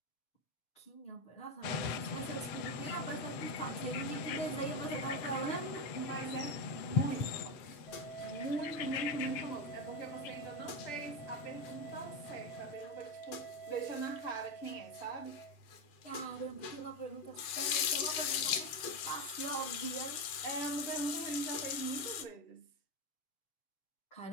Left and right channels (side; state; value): right; late; 7.8 ms